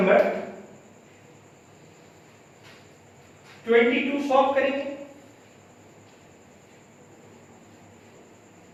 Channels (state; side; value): identical; both; correlation 1.00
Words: 22 सॉल्व करेंगे।